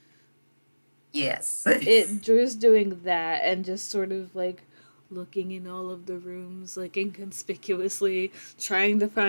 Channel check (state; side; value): inverted; both; correlation -1.00